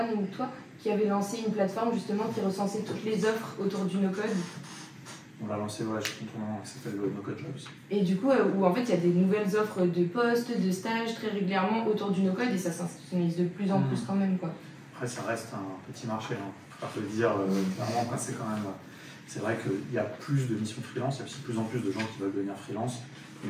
ou toi, qui avait lancé une plateforme justement qui recensait toutes les offres autour du no-code. On l'a lancé, ouais, je suis content, ça s'appelle No-Code Jobs. Et du coup, où en fait, il y a des nouvelles offres de postes, de stages très régulièrement autour du no-code, et ça s'institutionnalise de plus en plus quand même, quoi. Après, ça reste un petit marché, hein. Faut pas le dire clairement. C'est quand même... C'est vrai qu'il y a plus de missions freelance, il y a aussi de plus en plus de gens qui veulent devenir freelance,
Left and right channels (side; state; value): both; identical; correlation 1.00